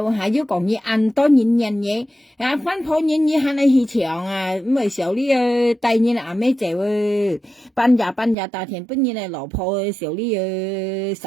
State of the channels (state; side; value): drops out; left; at 8.3 s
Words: 要講你按多年嘢，啊翻破年你喊你去搶啊，咪少啲第二阿咩就ban nhà大田本你嚟老婆少啲